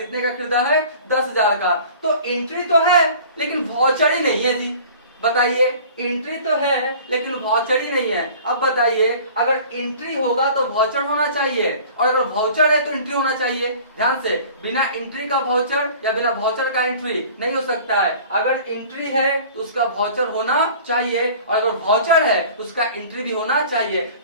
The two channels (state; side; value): inverted; both; correlation -0.45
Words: का खरीदा है, 10,000 का। तो एंट्री तो है लेकिन वाउचर ही नहीं है जी। बताइए एंट्री तो है लेकिन वाउचर ही नहीं है। अब बताइए अगर एंट्री होगा तो वाउचर होना चाहिए और अगर वाउचर है तो एंट्री होना चाहिए। ध्यान से, बिना एंट्री का वाउचर या बिना वाउचर का एंट्री नहीं हो सकता है। अगर एंट्री है तो उसका वाउचर होना चाहिए और अगर वाउचर है तो उसका एंट्री भी होना चाहिए।